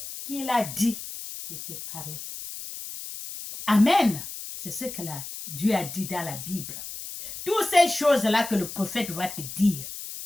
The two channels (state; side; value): noise; left; hiss, 10 dB below the sound